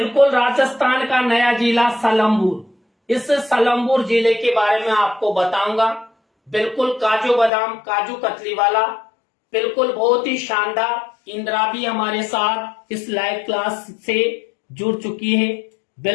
राजस्थान का नया जिला सलमपुर। इस सलमपुर जिले के बारे में आपको बताऊंगा। बिल्कुल काजू बादाम, काजू कतली वाला, बिल्कुल बहुत ही शानदार। इंदिरा भी हमारे साथ इस लाइव क्लास से जुड़ चुकी है।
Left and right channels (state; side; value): drops out; right; at 7.5 s